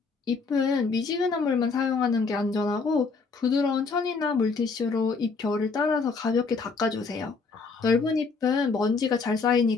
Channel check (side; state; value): right; quieter; 4.5 dB